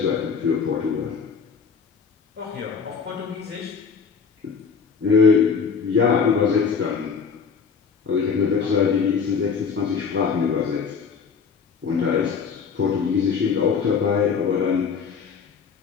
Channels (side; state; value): right; quieter; 5.9 dB